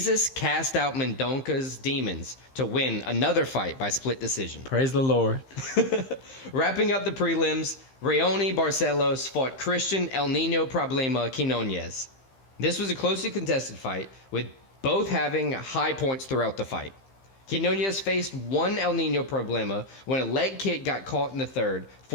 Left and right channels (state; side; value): late; right; 15 ms